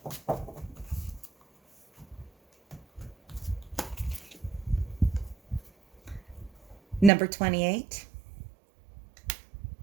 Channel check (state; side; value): drops out; left; at 7.1 s